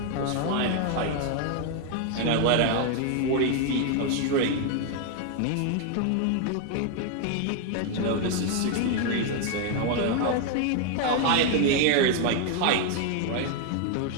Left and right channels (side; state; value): both; different; correlation 0.01